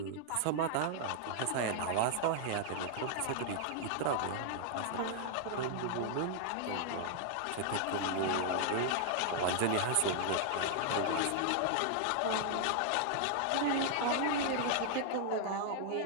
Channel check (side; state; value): both; different; correlation 0.00